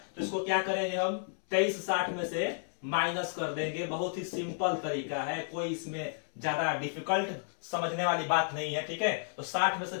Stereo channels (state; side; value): silent; right; 56 dB below the other